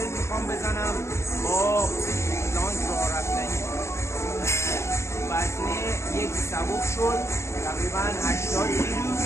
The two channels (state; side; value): late; right; 0.13 ms